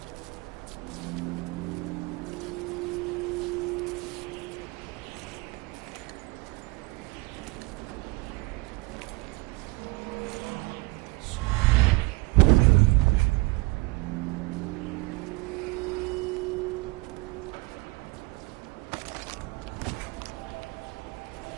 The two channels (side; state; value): left; quieter; 24.2 dB